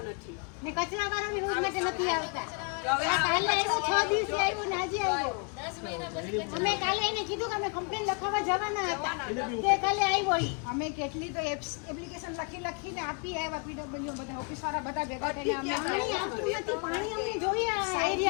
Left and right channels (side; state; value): right; quieter; 36.8 dB